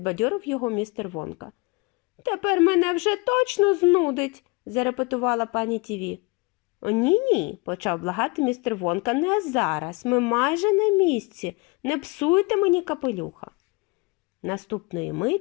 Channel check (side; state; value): right; quieter; 26.7 dB